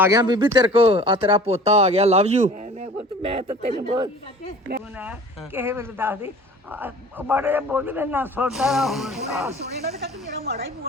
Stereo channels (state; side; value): normal; both; correlation 0.45